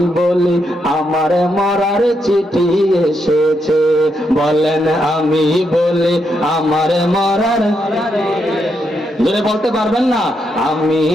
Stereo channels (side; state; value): both; normal; correlation 0.80